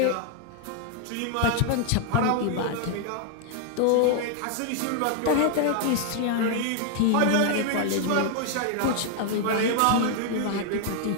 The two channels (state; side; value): different; both; correlation 0.00